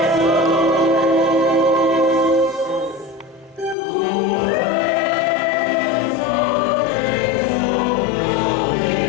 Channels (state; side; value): drops out; right; at 3.8 s